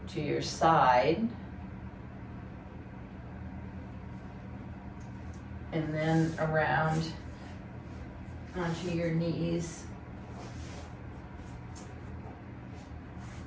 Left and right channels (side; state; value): both; identical; correlation 1.00